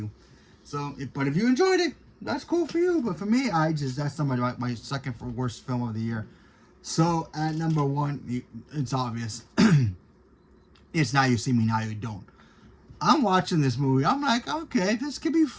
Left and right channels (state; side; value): identical; both; correlation 1.00